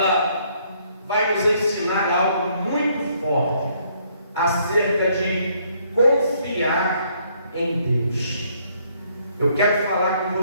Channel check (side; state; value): both; inverted; correlation -0.68